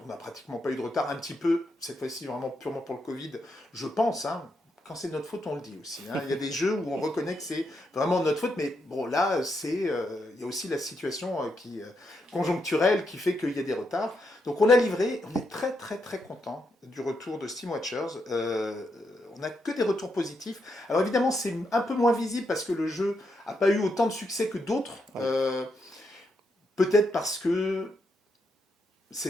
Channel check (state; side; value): normal; both; correlation 0.81